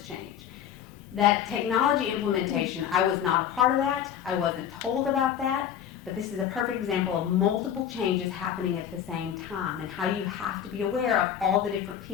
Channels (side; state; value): right; quieter; 9.4 dB